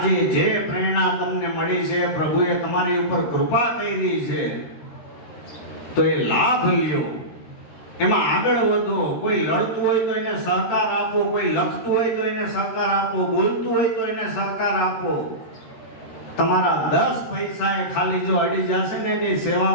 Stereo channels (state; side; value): late; right; 13 ms